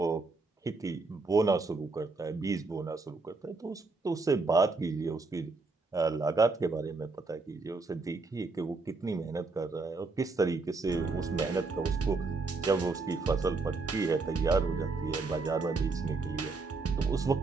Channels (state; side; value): quieter; left; 3.8 dB